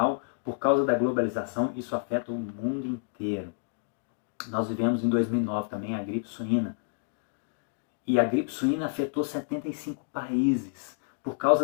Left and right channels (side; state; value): right; silent; digital silence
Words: por causa da globalização, isso afeta o mundo inteiro. Nós vivemos em 2009 também a gripe suína. E a gripe suína afetou 75 países, por